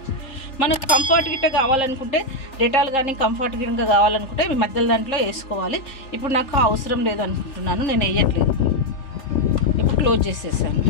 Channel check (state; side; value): late; right; 3.4 ms